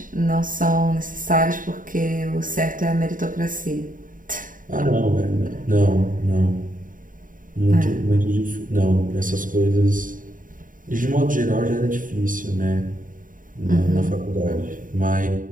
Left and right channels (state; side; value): late; left; 0.39 ms